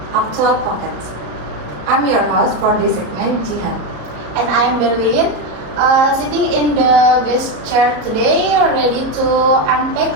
actual pockets. I'm your host for this segment, Jihan. And I'm Berlin, sitting in the guest chair today, ready to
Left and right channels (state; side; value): late; left; 33 ms